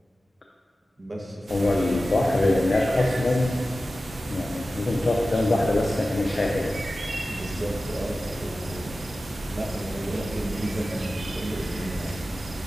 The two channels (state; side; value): normal; both; correlation 0.95